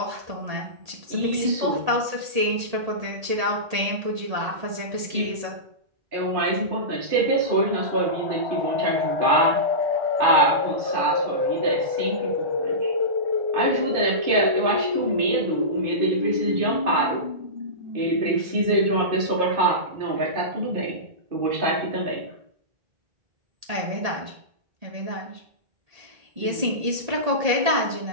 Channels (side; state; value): left; late; 1.8 ms